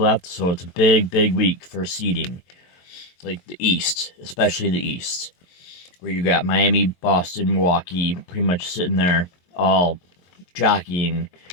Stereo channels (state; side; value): late; right; 23 ms